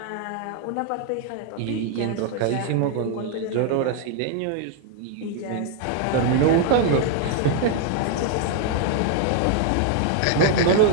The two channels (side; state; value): both; different; correlation 0.00